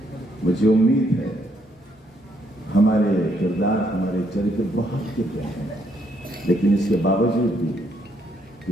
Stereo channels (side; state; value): both; normal; correlation 0.72